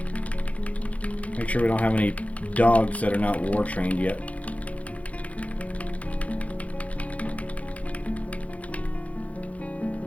Make sure we don't have any dogs that are not war trained yet.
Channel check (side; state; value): right; late; 0.067 ms